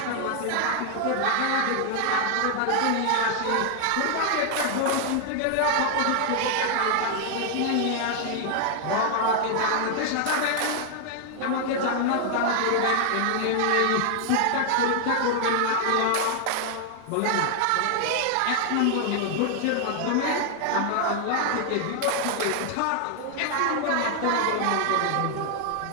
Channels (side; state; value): both; different; correlation 0.00